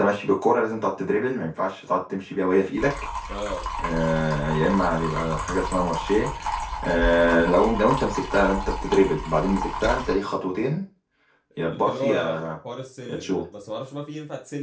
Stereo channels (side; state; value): both; identical; correlation 1.00